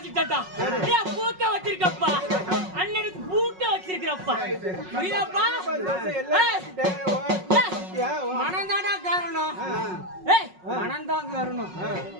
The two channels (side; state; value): left; late; 5.4 ms